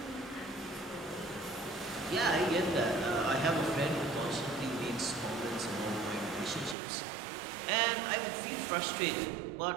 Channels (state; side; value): drops out; left; at 6.8 s